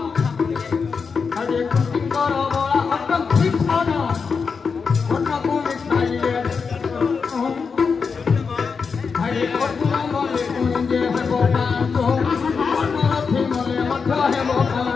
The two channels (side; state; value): right; quieter; 5.4 dB